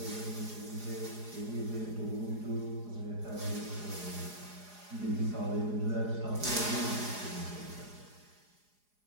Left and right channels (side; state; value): left; late; 4.8 ms